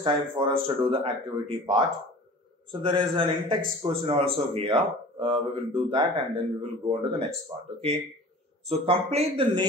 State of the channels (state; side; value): normal; both; correlation 0.42